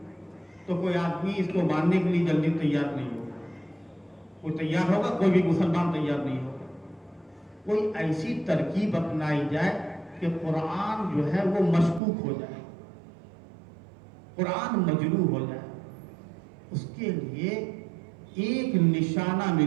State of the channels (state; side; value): drops out; left; at 12.0 s